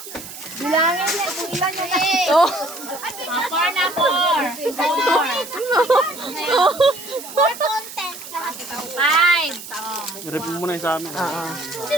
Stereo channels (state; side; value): noise; right; hiss, 13 dB below the sound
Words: Bilangin niya kung ilan yung To. Four na, four. for content. Five. I-review mo na yung sa amin. Si